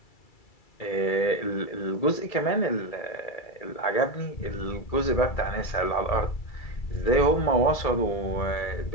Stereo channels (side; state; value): right; late; 2.3 ms